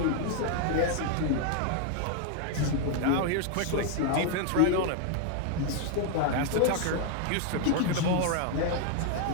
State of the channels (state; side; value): different; both; correlation 0.00